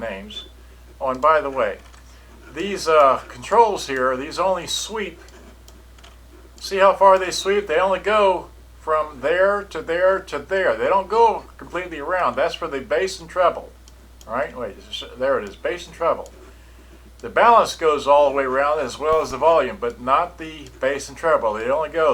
Oh, and by the way, these controls here, these only sweep. See how far they sweep? They only go from there to there to there. They don't go completely around. That's for the bass and treble. All right, wait, there it is, bass and treble. The balance goes all the way around as well as the volume, but not the bass and treble. They only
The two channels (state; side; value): identical; both; correlation 1.00